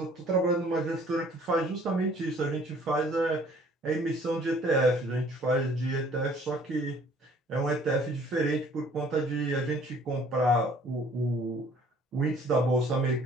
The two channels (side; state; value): both; normal; correlation 0.56